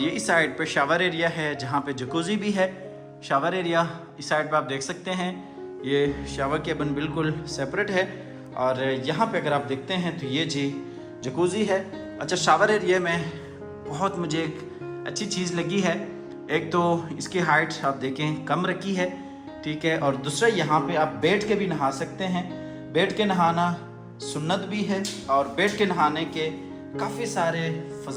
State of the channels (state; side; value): identical; both; correlation 1.00